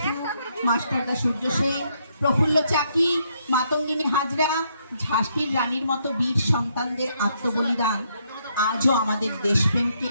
মাস্টারদা সূর্য সেন, প্রফুল্ল চাকি, মাতঙ্গিনী হাজরা, ঝাঁসির রানীর মতো বীর সন্তানদের আত্মবলিদান আজও আমাদের দেশপ্রেমকে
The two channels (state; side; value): inverted; both; correlation -0.74